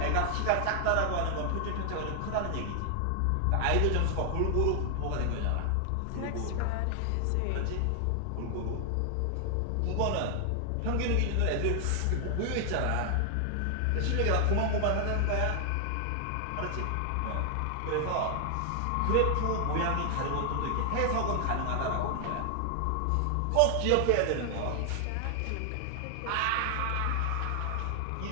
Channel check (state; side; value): different; both; correlation 0.00